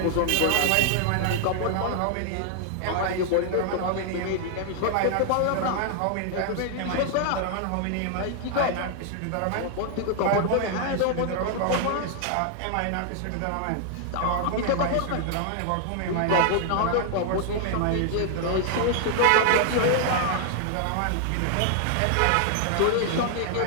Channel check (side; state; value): both; different; correlation 0.00